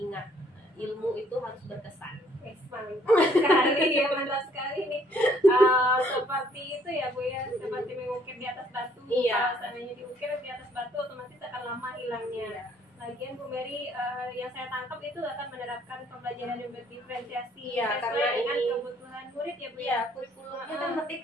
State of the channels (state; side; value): normal; both; correlation 0.64